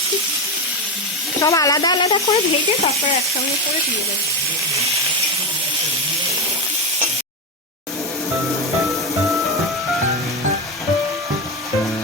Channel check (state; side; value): normal; both; correlation 0.15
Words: সব আলাদা আলাদা করে ভেজে তারপরে একসঙ্গে করে দিয়ে দেবো।